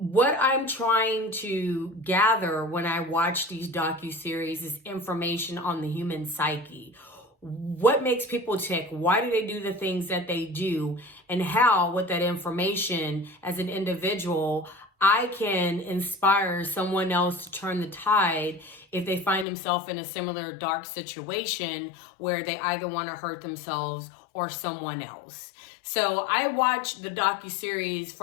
I'm trying to gather when I watch these docuseries is information on the human psyche. What makes people tick? Why do they do the things that they do? And how, with that information as an individual, I can inspire someone else to turn the tide if they find themselves in a similar dark situation where they either want to hurt themselves or someone else. So I watch the docuseries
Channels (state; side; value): drops out; right; at 19.5 s